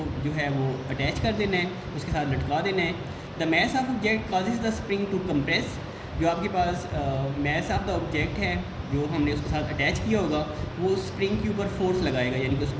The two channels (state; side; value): identical; both; correlation 1.00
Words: जो है वो अटैच कर देना है, उसके साथ लटका देना है। The mass of object causes the spring to compress. जो आपके पास मैस ऑफ द ऑब्जेक्ट है जो हमने उसके साथ अटैच किया होगा वो स्प्रिंग के ऊपर फोर्स लगाएगा, यानी कि